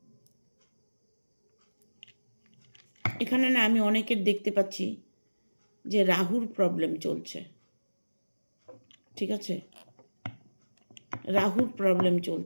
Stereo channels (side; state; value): both; inverted; correlation -1.00